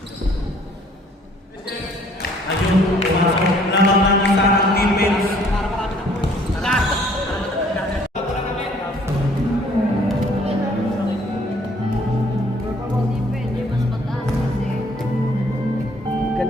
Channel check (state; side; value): normal; both; correlation 0.60